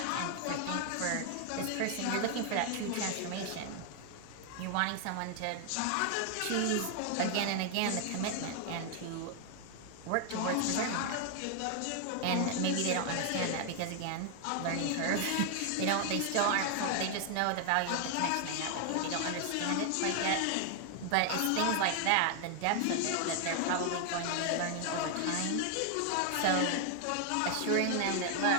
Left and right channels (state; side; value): different; both; correlation 0.00